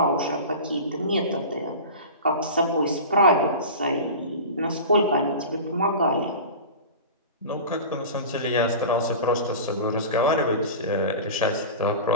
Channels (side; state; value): both; inverted; correlation -0.32